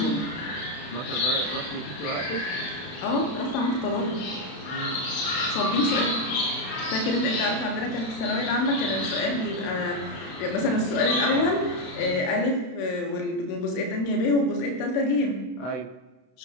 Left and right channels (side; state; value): right; late; 32 ms